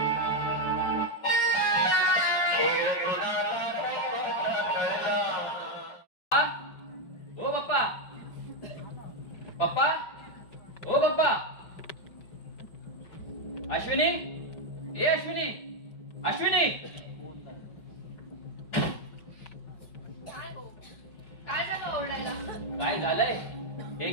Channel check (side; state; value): right; late; 5.2 ms